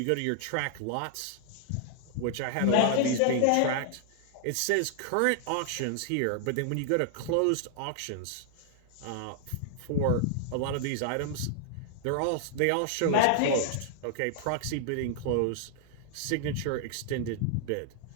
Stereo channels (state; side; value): different; both; correlation 0.00